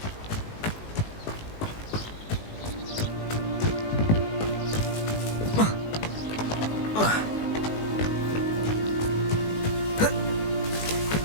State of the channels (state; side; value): late; right; 19 ms